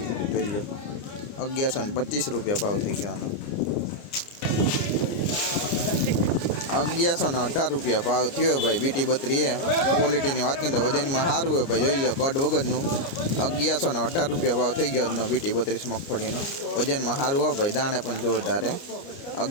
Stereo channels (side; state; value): right; late; 29 ms